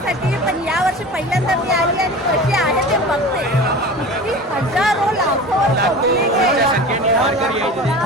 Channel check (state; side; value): normal; both; correlation 0.35